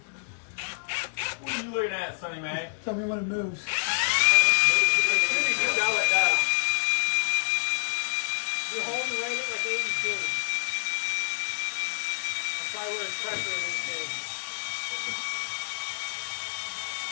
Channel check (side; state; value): right; silent; digital silence